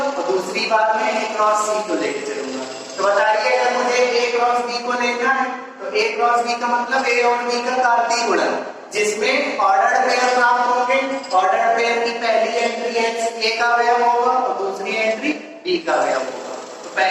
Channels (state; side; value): identical; both; correlation 1.00